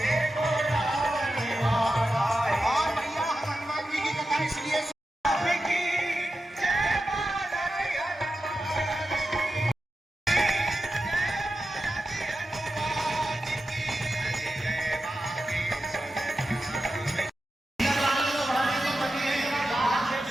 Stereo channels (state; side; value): normal; both; correlation 0.91